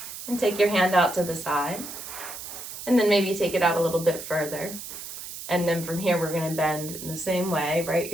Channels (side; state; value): right; noise; hiss, 10 dB below the sound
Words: and take your hand out to the side. And then maybe take it out a little bit further. And then from here, we're going to bend in the same way. Right